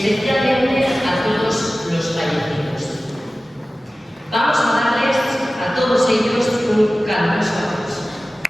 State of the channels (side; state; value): both; normal; correlation 0.96